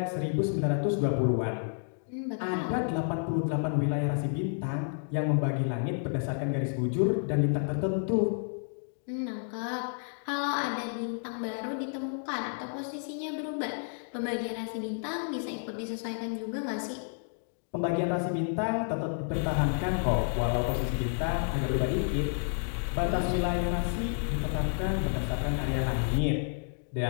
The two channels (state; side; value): silent; right; digital silence